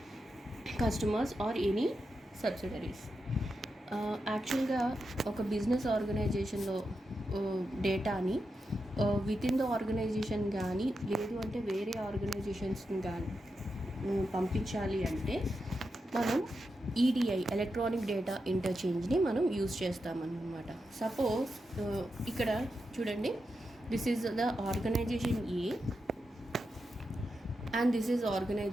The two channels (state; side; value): normal; both; correlation 0.87